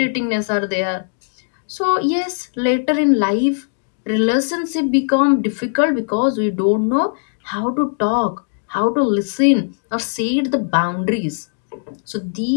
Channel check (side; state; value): right; silent; digital silence